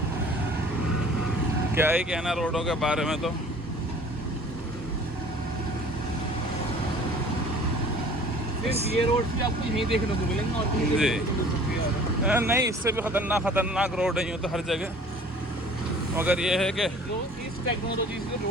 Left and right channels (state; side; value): normal; both; correlation 0.49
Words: क्या ही कहना रोडों के बारे में। तो सिर्फ ये रोड भी आपको यहीं देखने को मिलेंगे और कहीं जी। देखने को मिल सकती है। नहीं, इससे भी खतरनाक रोड है यूँ तो हर जगह, मगर ये है कि जो इस टेक्नोलॉजी से